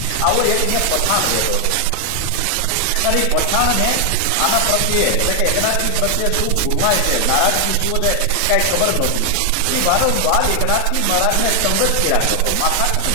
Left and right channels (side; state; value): both; different; correlation 0.00